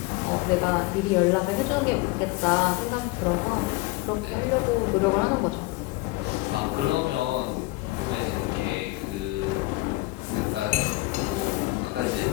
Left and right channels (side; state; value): right; quieter; 21.8 dB